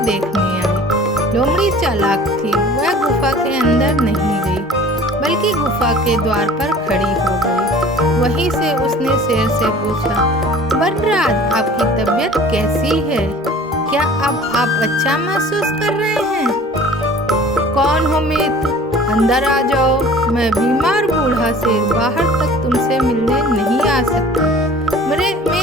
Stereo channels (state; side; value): normal; both; correlation 0.46